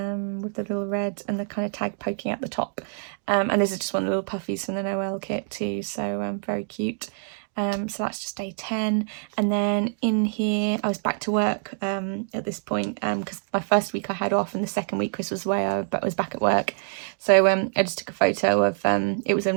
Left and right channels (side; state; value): left; silent; digital silence